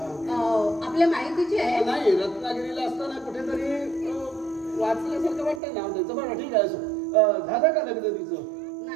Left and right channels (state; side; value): drops out; left; at 5.6 s